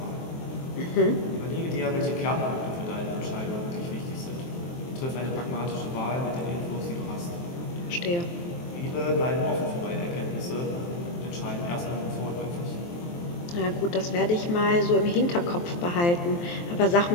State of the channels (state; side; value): late; right; 23 ms